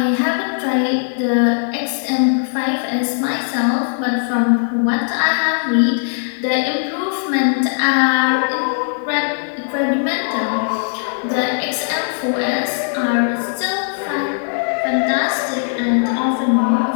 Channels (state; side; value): silent; right; 64 dB below the other